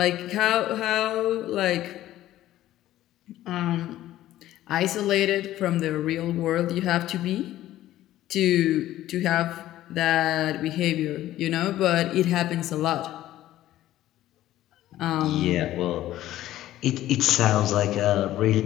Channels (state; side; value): quieter; right; 14.1 dB